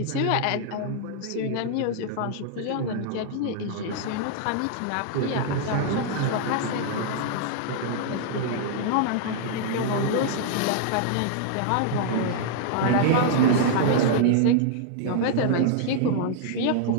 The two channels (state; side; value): different; both; correlation -0.01